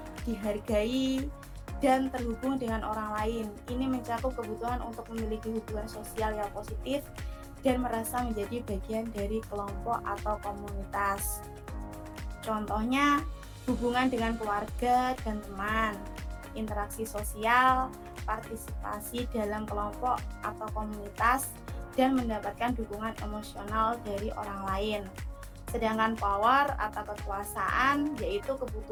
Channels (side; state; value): both; identical; correlation 1.00